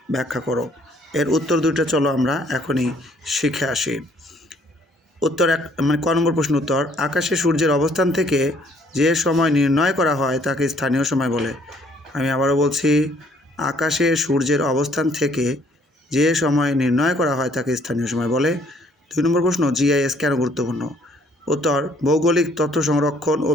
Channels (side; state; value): both; normal; correlation 0.63